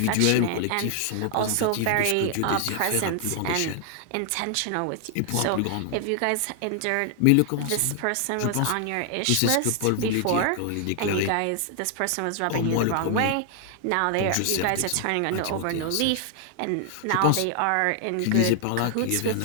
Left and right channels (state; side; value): different; both; correlation 0.00